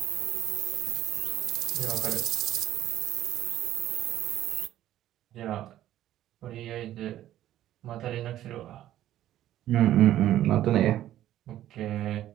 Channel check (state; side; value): quieter; left; 12.8 dB